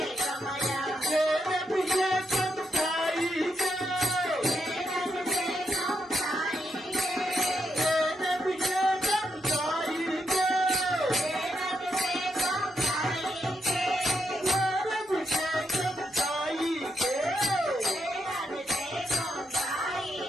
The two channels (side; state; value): both; normal; correlation 0.82